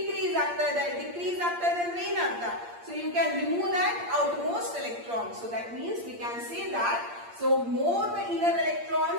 ಆಗ್ತಾ ಇದೆ. Decrease ಆಗ್ತಾ ಇದೆ ಅಂದ್ರೆ ಏನರ್ಥ? So you can remove that outermost electron. So that means we can say that, so more the inner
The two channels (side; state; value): left; late; 8.6 ms